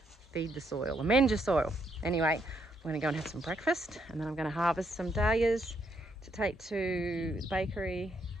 the soil, amend your soil. Anyway, I'm going to go and have some breakfast, and then I'm going to harvest some dahlias to take to the bakery.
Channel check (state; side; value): normal; both; correlation 0.75